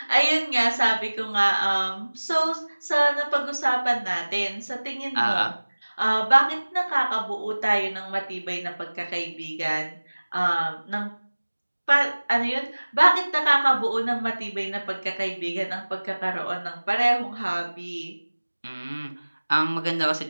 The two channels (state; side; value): inverted; both; correlation -1.00